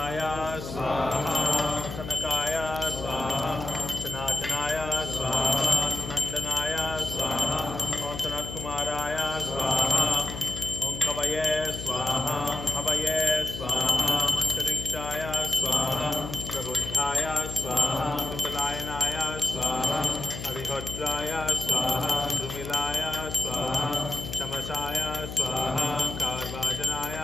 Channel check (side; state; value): left; noise; hum, 9 dB below the sound